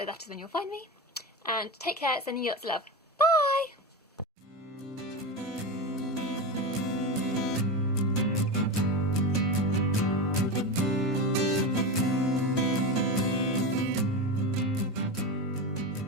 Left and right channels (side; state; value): both; normal; correlation 0.20